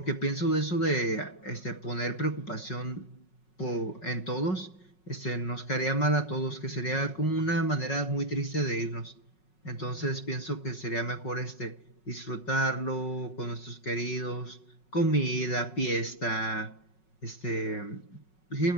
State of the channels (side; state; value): right; late; 5.4 ms